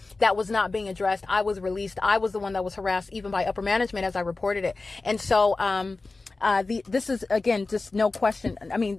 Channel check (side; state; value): right; quieter; 3.5 dB